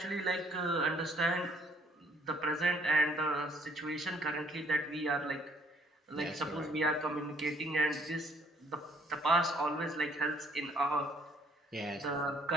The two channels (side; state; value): both; normal; correlation 0.63